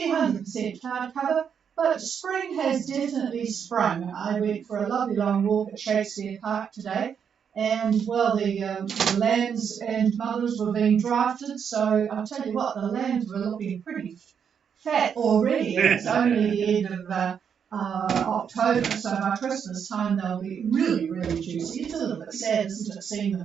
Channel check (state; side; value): quieter; left; 7.4 dB